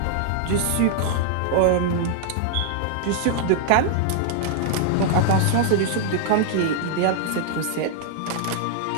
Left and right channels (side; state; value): both; different; correlation -0.01